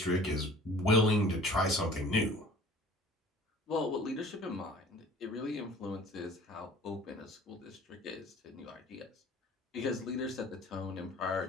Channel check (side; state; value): both; normal; correlation 0.47